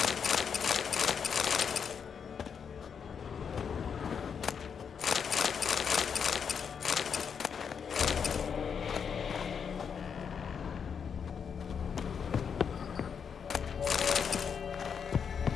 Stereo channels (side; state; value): right; quieter; 6.8 dB